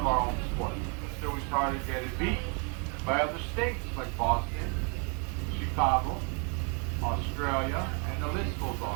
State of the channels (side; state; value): left; quieter; 36.2 dB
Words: our own sport. So we started getting beat by other states like Boston, Chicago, Australia, and the list goes